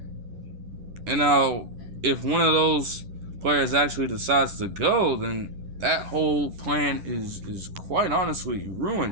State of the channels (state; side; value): late; left; 11 ms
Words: And now, if one of those players actually decides to go, then that whole plan is quite honestly